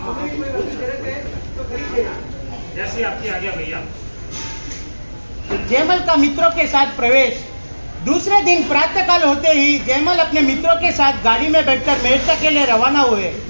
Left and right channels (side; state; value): both; inverted; correlation -1.00